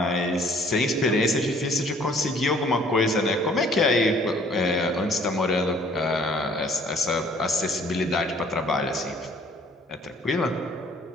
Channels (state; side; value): normal; both; correlation 0.58